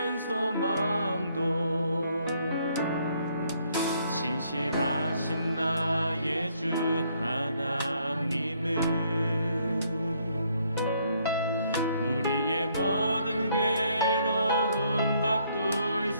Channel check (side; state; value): both; inverted; correlation -0.69